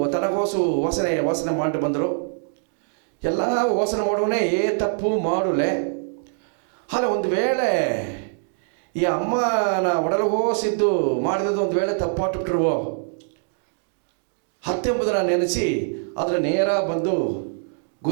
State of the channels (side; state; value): left; silent; digital silence